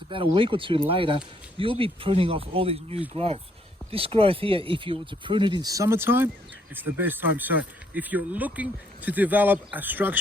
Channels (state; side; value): normal; both; correlation 0.69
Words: about a week or two later, you'll be pruning off all this new growth. This growth here, if you were to prune it in summertime, it's the best time. So if you're looking to develop a